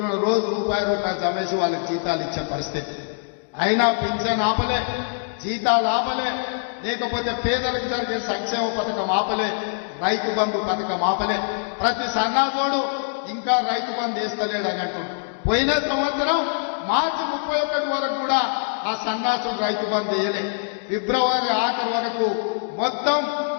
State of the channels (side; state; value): right; silent; digital silence